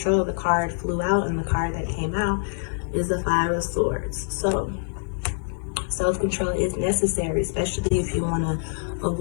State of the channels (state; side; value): silent; right; digital silence